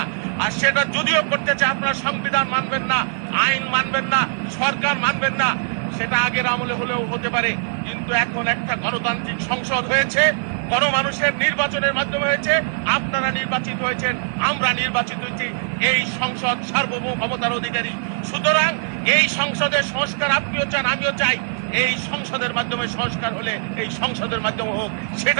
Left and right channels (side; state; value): left; silent; 64 dB below the other